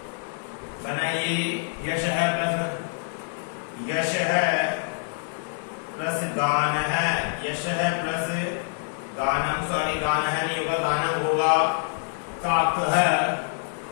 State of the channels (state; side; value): silent; right; digital silence